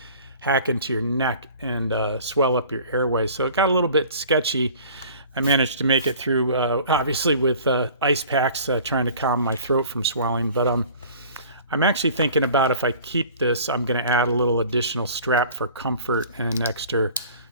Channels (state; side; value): inverted; both; correlation -0.47